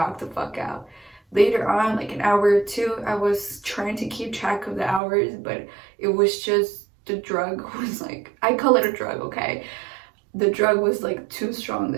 the fuck out. Later on, like an hour or two, I was trying to keep track of the hours, but it was just, the drug was like, I call it a drug, okay? The drug was like too strong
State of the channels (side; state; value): left; drops out; at 5.0 s